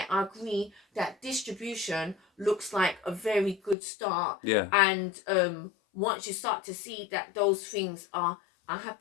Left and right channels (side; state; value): right; drops out; at 3.8 s